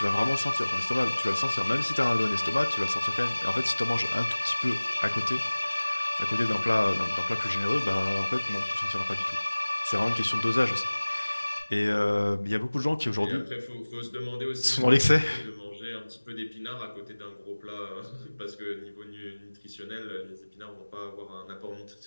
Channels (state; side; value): inverted; both; correlation -1.00